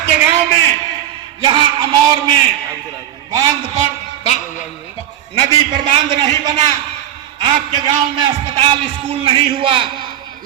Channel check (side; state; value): left; quieter; 11.5 dB